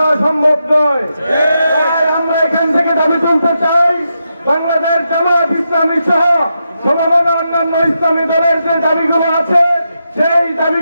সম্ভব নয়। তাই আমরা এখান থেকে দাবি তুলতে চাই, বাংলাদেশ জামায়াত ইসলামী সহ সমমনা অন্যান্য ইসলামী দলের যে দাবিগুলো আছে, সেই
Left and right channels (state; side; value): inverted; both; correlation -0.85